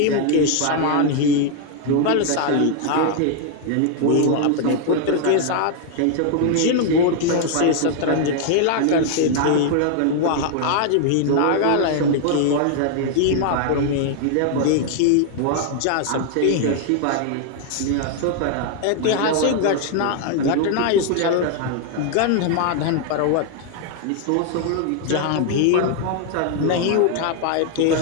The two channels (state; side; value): different; both; correlation 0.00